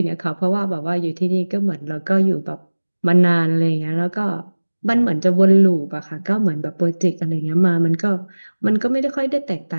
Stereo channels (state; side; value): inverted; both; correlation -1.00